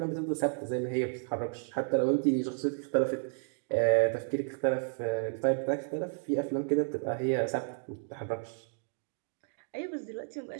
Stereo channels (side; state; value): left; silent; digital silence